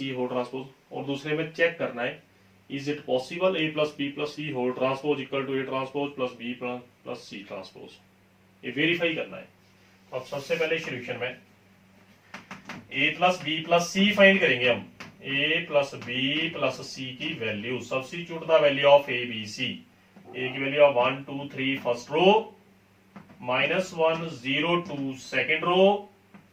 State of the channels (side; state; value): both; identical; correlation 1.00